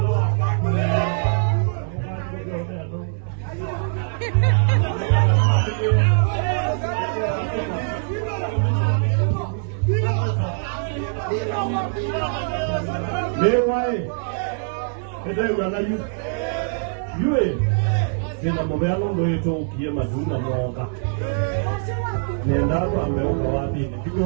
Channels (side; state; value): left; silent; digital silence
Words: Mewae. Ede wana yu. Yue. Sina mobelo ndo yeto ukie maduna mwoka. Nenda kwa meuka wapi ni